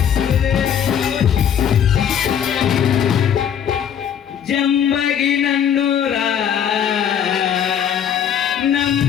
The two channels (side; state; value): right; quieter; 8.8 dB